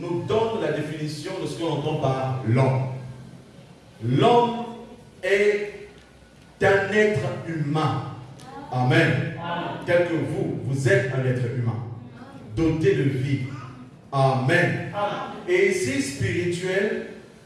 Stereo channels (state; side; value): identical; both; correlation 1.00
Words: donne la définition de ce qu'on entend par l'homme. L'homme est un être humain. Amen. Tel que vous êtes un être humain, doté de vie. Amen. Et ici, spirituel